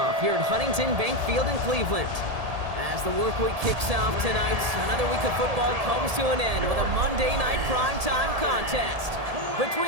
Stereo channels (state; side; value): late; left; 1.7 ms